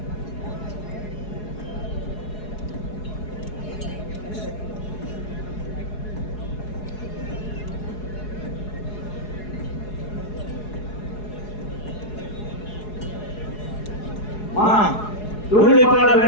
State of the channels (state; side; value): late; right; 4.8 ms